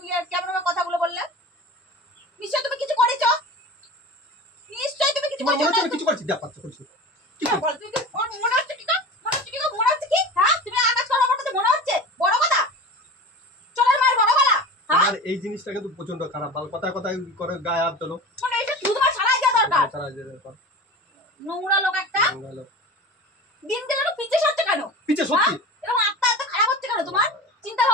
কেমন ভাবে কথাগুলো বললে? নিশ্চয় তুমি কিছু করেছো, নিশ্চয় তুমি কিছু তোমার মনে হচ্ছে করেছো। আমি কিছু করছি? যা পাচ্ছ করছি কি হ্যাঁ, করছি? বল, তুমি মনে হচ্ছে কি? মনে হচ্ছে কি? মনে হচ্ছে কি? হ্যাঁ তুমি আকাশ করার মতো মনে হচ্ছে? বড় কথা চলের মায়ের বড় গলা। হ্যাঁ আমার এই জিনিসটা কিন্তু প্রচন্ড খারাপ, ভালো কথায় কথায় করে গায়ে হাত তোলো। মানে এটা শুধু তোমার সারাই দেওয়া দরকার। সারা যেতে পার। নোংরা লোক একটা। ভালো। দিন গেলে তো পিছে সরছে কেন? পিছে সত্যি এরকম আত্মা এত খারাপ হচ্ছে কেন তোমার? চিন্তা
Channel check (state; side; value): normal; both; correlation 0.33